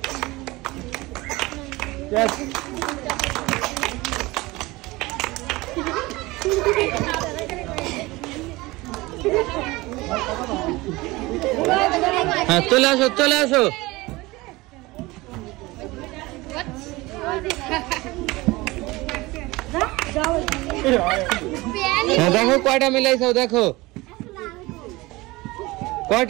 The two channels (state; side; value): quieter; left; 21.3 dB